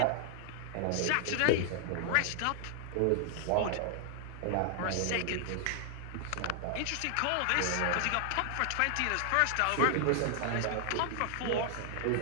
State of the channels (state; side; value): different; both; correlation 0.00